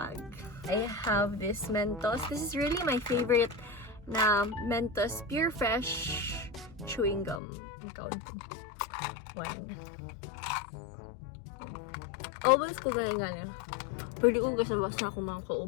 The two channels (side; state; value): right; drops out; at 7.4 s